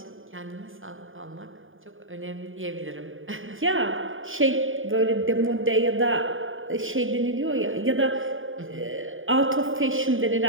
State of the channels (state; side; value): late; left; 0.58 ms